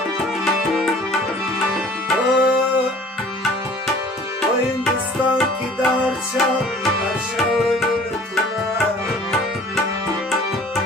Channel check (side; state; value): both; normal; correlation 0.50